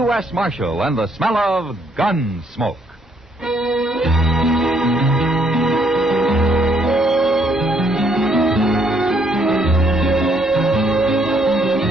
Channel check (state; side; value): normal; both; correlation 0.69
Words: Marshal and the smell of gun smoke.